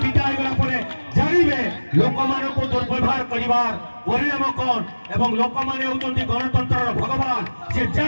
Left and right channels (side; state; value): both; inverted; correlation -1.00